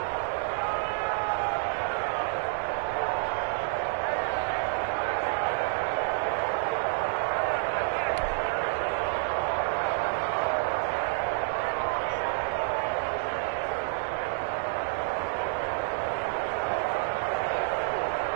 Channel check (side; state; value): left; silent; digital silence